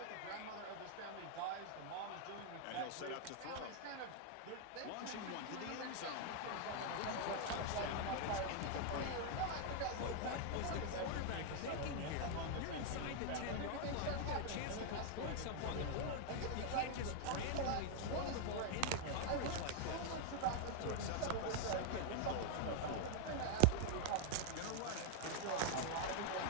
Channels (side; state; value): both; different; correlation 0.00